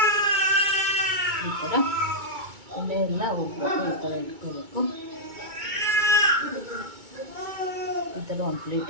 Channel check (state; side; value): late; left; 2.2 ms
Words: ಈ ಥರ ಎಣ್ಣೆ ಎಲ್ಲ ಹೋಗ್ಬೇಕು, ಈ ಥರ ಇಟ್ಕೋಬೇಕು. ಈ ಥರ ಒಂದು